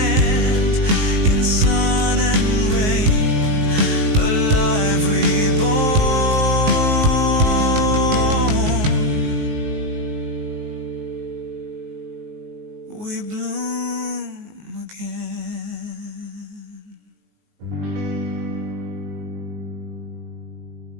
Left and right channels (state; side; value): late; left; 19 ms